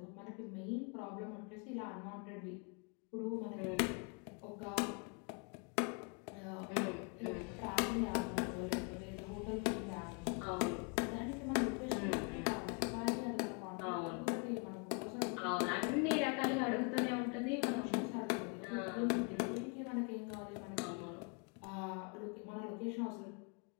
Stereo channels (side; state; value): right; quieter; 34.6 dB